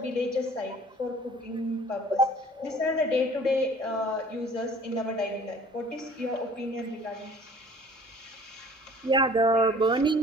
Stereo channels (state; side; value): normal; both; correlation 0.50